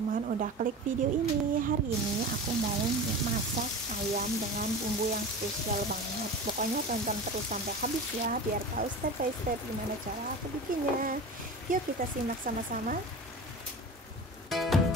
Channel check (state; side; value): normal; both; correlation 0.32